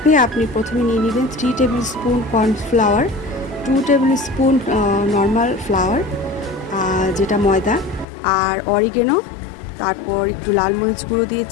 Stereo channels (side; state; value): right; drops out; at 8.1 s